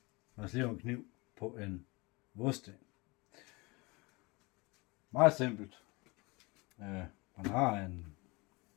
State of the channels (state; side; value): quieter; right; 25.8 dB